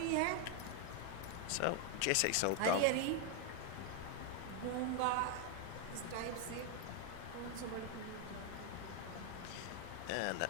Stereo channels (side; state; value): both; different; correlation 0.00